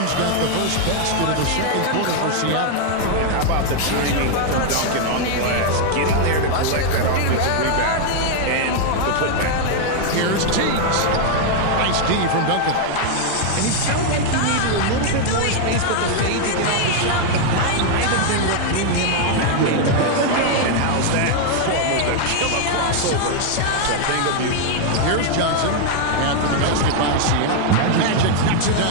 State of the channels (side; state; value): both; different; correlation 0.00